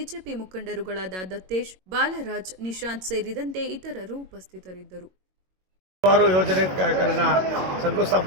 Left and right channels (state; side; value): late; left; 22 ms